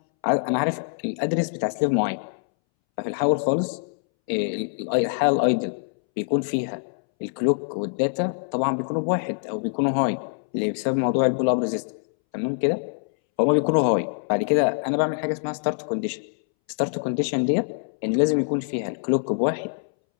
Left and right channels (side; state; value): right; silent; 62 dB below the other